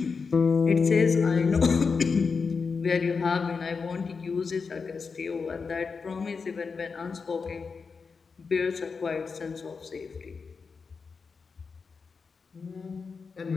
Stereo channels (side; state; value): right; quieter; 5.1 dB